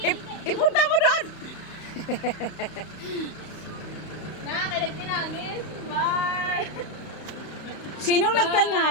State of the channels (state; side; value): late; right; 31 ms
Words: Ipunta mo doon. Nakakailag tinangis. Bye. Sinong